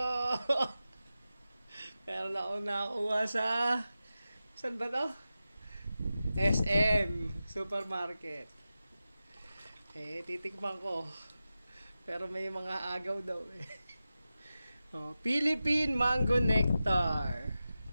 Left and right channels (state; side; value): inverted; both; correlation -0.93